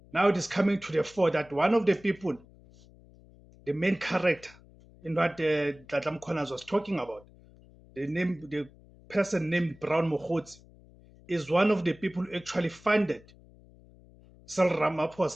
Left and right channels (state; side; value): noise; left; hum, 24 dB below the sound